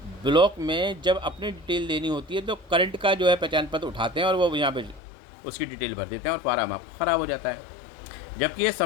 ब्लॉक में जब अपनी डिटेल देनी होती है तो करंट का जो है पहचान पत्र उठाते हैं और वो यहाँ पे उसकी डिटेल भर देते हैं और फार्म आपका ख़राब हो जाता है। जबकि ये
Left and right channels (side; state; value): right; drops out; at 5.0 s